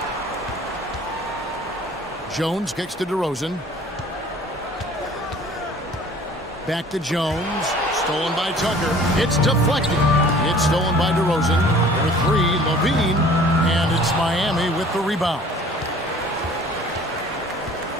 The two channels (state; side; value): normal; both; correlation 0.49